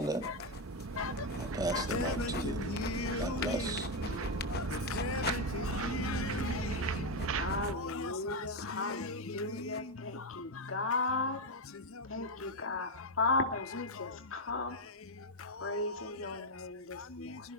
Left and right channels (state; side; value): normal; both; correlation 0.06